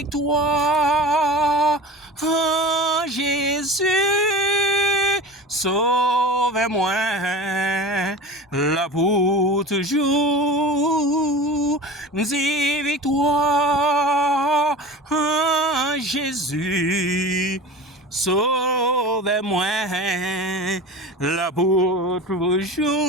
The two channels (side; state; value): both; normal; correlation 0.34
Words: en Jésus, sauve-moi là pour toujours. Dis victoire en Jésus. Sauve-moi, là pour